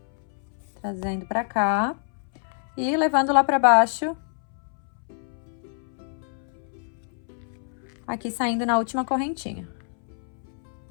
trazendo pra cá, e levando lá pra baixo, aqui saindo na última correntinha.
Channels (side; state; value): right; silent; 60 dB below the other